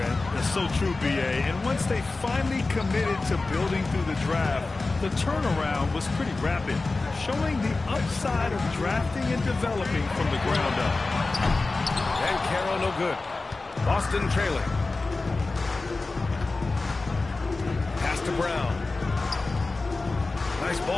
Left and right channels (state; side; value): quieter; right; 3.5 dB